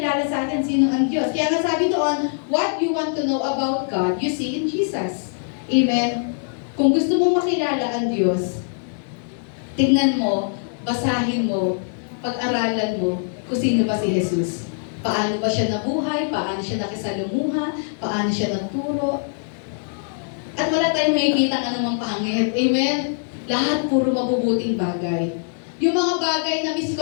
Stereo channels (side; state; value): right; silent; digital silence